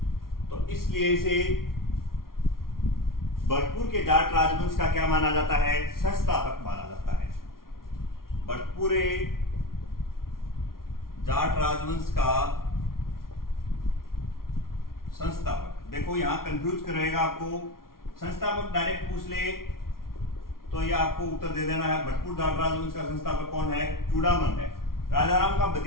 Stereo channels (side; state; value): right; late; 0.93 ms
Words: तो इसलिए इसे भरतपुर के जाट राजवंश का क्या माना जाता है, संस्थापक माना जाता है। भरतपुर जाट राजवंश का संस्थापक। देखो यहां कंफ्यूज करेगा आपको, संस्थापक डायरेक्ट पूछ ले तो ये आपको उत्तर दे देना है। भरतपुर जाट राजवंश का संस्थापक कौन है, चूड़ामन है। राजा राम का